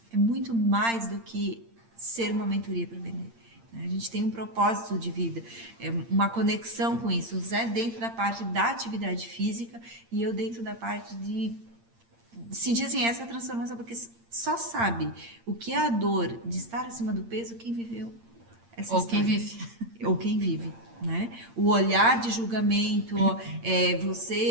É muito mais do que ser uma mentoria para vender. A gente tem um propósito de vida, uma conexão com isso. O Zé dentro da parte da atividade física e eu dentro da parte de sentir assim, essa transformação, porque só sabe o que é a dor de estar acima do peso quem viveu essa Ou quem história. vive. Ou quem vive. Né? O olhar de julgamento,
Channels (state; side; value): late; left; 8.7 ms